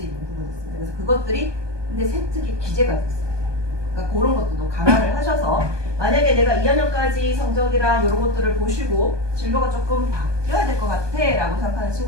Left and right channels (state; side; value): late; left; 1.2 ms